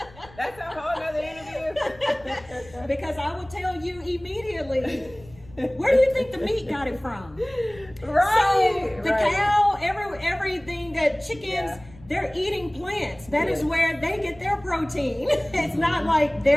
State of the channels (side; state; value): left; noise; rumble, 22 dB below the sound